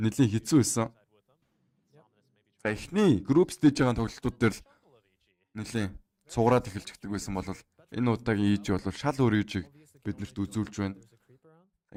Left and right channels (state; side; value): identical; both; correlation 1.00